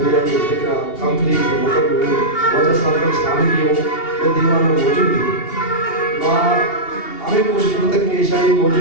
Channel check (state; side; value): late; right; 2.8 ms